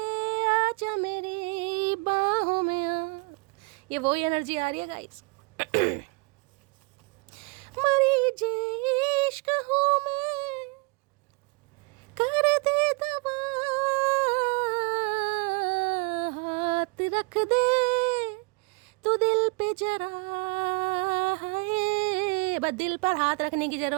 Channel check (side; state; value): left; quieter; 30.6 dB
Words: आजा मेरी बाहों में आ। ये वही एनर्जी आ रही है गाइस। मरी जे इश्क हूँ मैं, कर दे दवा, हाथ रख दे तू दिल पे जरा। है बस दिल पर हाथ रखने की